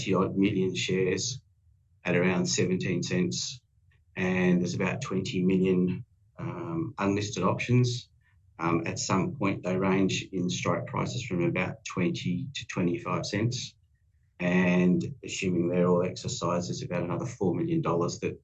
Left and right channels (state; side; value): identical; both; correlation 1.00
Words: million shares at around 17 cents, and there's about 20 million unlisted options. At some point, they range in strike prices from about 20 to 25 cents. And assuming they're all exercised, there's about another $4 million that